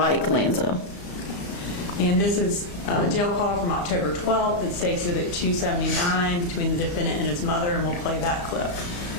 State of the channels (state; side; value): late; right; 34 ms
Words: Lanza. And this is a jail call from October 12th. It states that at 279 between the defendant and his mother, and we'll play that clip.